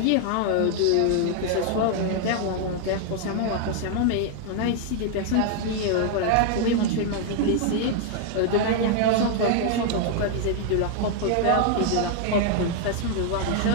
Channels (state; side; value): different; both; correlation 0.00